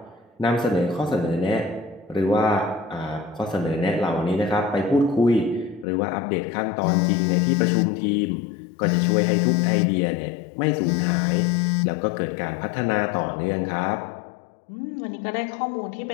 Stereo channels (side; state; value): right; drops out; at 5.9 s